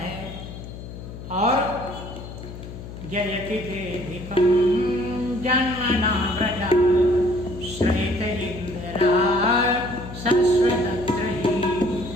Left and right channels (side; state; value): left; noise; hum, 12 dB below the sound